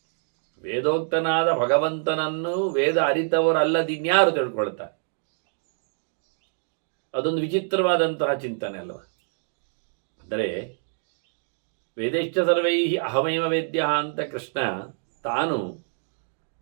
ವೇದೋಕ್ತನಾದ ಭಗವಂತನನ್ನು ವೇದ ಅರಿತವರಲ್ಲದಿನ್ಯಾರು ತಿಳ್ಕೊಳ್ತಾರೆ. ಅದೊಂದು ವಿಚಿತ್ರವಾದಂತಹ ಚಿಂತನೆ ಅಲ್ವ. ಅಂದರೆ ವೇದೇಶ್ಚ ಸರ್ವೈ ಅಹಮೇವ ವೇದ್ಯ ಅಂತ ಕೃಷ್ಣ ತಾನು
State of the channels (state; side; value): silent; left; digital silence